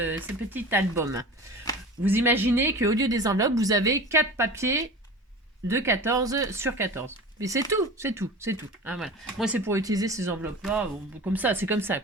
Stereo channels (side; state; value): both; normal; correlation 0.35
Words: album. Vous imaginez qu'au lieu des enveloppes, vous avez 4 papiers de 14 sur 14. Mais c'est tout. Hein, voilà. Moi, c'est pour utiliser ces enveloppes-là, comme ça, c'est comme ça,